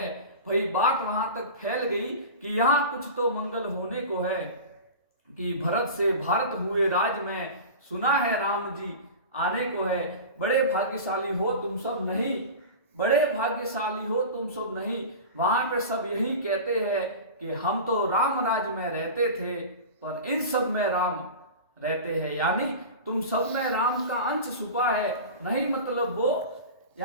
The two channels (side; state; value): both; inverted; correlation -0.32